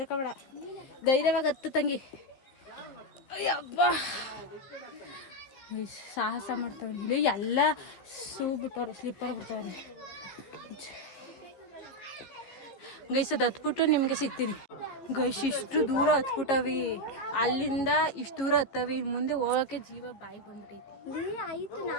ಧೈರ್ಯವಾಗಿ ಹತ್ತು ತಂಗಿ. ಅಯ್ಯಬ್ಬ ಸಾಹಸ ಮಾಡ್ತಾವ್ರಿ ಇಲ್ಲಿ ಎಲ್ಲ ಶೂ ಬಿಟ್ಟವ್ರೆ, ಸ್ಲಿಪ್ಪರ್ ಬಿಡ್ತಾವ್ರಿ. ಗೈಸ್ ಅದು ಹತ್ಬಿಟ್ಟು ನಿಮಗೆ ಸಿಗ್ತೀನಿ ಗೈಸ್. ಇಷ್ಟು ದೂರ ಹತ್ಬಿಟ್ಟವಿ, ಅಲ್ಲಿಂದ ಇಷ್ಟು ದೂರ ಹತ್ತವಿ, ಮುಂದೆ ಹೋಗಕ್ಕೆ ಜೀವ ಬಾಯಿ ಬಂದ್ಬಿಟ್ಟೈತಿ. ಆಯ್ತು,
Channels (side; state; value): right; late; 15 ms